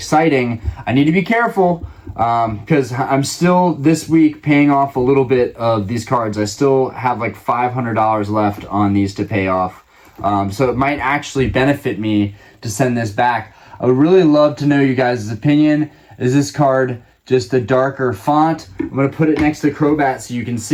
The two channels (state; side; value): identical; both; correlation 1.00